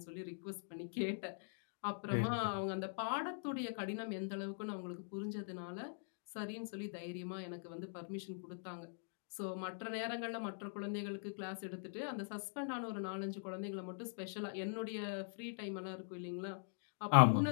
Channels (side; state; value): right; silent; digital silence